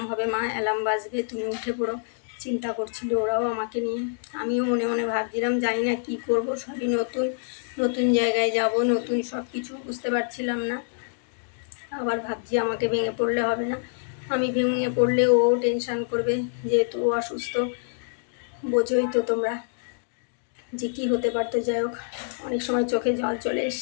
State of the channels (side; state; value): right; silent; digital silence